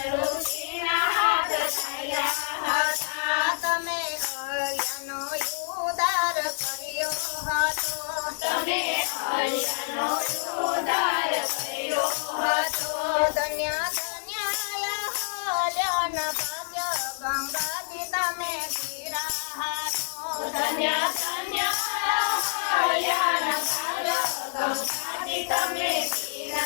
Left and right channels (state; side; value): silent; right; digital silence